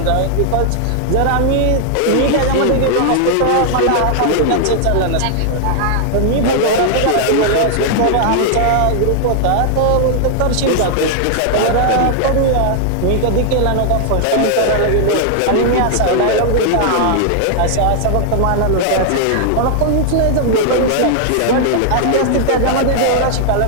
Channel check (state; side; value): different; both; correlation 0.00